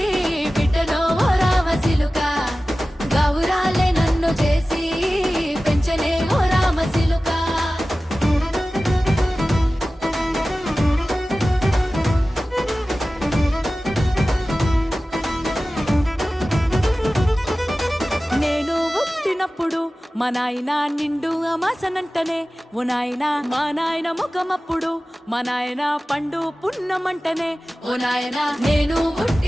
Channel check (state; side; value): normal; both; correlation 0.96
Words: బిడ్డలో ఓ రామసిలుక గౌరాలే నన్ను చేసి పెంచనే ఓ రామసిలుక నేను పుట్టినప్పుడు మా నాయన నిండు అమాసనంటనే ఓ నాయన మా నాయన ముఖమప్పుడు మా నాయన పండు పున్నమంటనే ఓ నాయన నేను